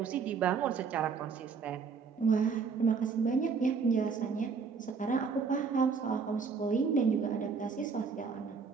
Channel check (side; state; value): left; quieter; 5.5 dB